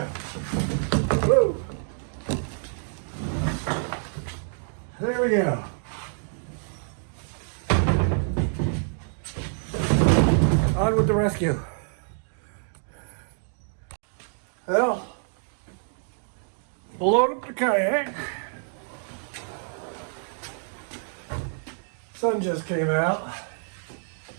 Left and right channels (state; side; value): silent; left; digital silence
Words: Whoa. There we go. On with the rescue. Well, load up the kayak. Sun just came out.